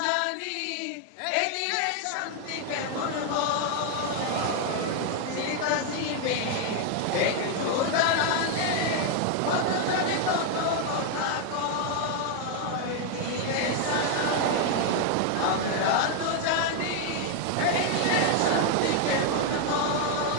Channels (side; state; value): both; different; correlation 0.01